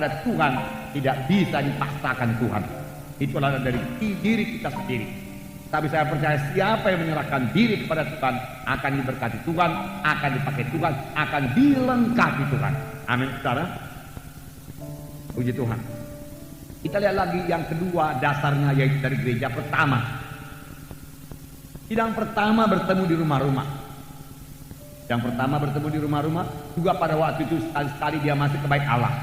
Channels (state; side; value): identical; both; correlation 1.00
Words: Tuhan tidak bisa dipaksakan Tuhan. Itulah dari diri kita sendiri. Tapi saya percaya siapa yang menyerahkan diri kepada Tuhan akan diberkati Tuhan, akan dipakai Tuhan, akan dilengkapi Tuhan. Amin, saudara. Puji Tuhan. Kita lihat lagi yang kedua dasarnya, yaitu dari gereja pertama. Sidang pertama bertemu di rumah-rumah. Yang pertama bertemu di rumah-rumah, juga pada waktu itu sekali-sekali dia masih ke bait Allah.